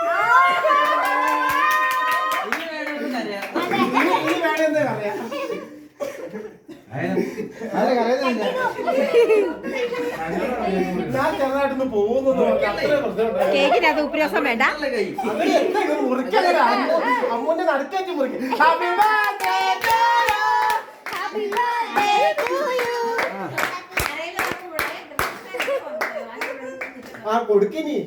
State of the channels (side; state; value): both; identical; correlation 1.00